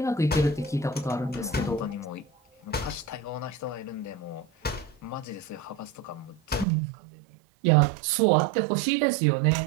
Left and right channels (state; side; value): drops out; left; at 6.7 s